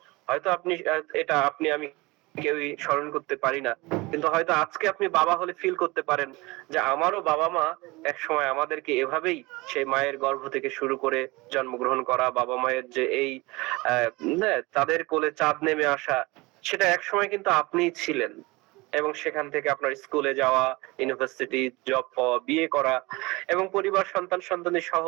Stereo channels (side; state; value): left; quieter; 23.2 dB